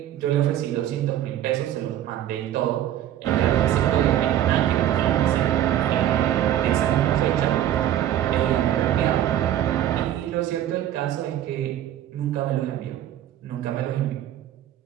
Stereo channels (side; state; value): left; quieter; 11.8 dB